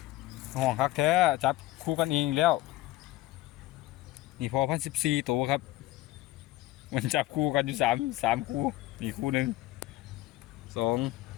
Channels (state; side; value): quieter; right; 16.9 dB